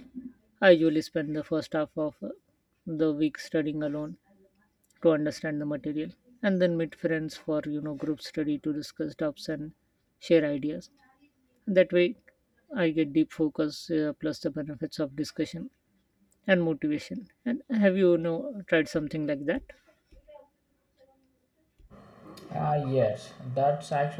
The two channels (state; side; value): identical; both; correlation 1.00